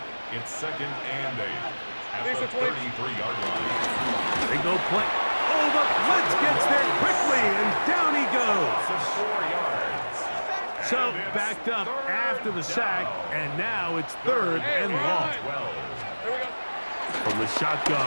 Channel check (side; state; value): both; inverted; correlation -1.00